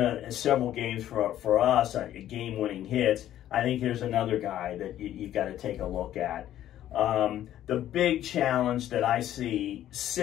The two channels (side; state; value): right; quieter; 12.2 dB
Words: several games for us, game-winning hits. I think there's another guy that you've got to take a look at. The big challenge that I see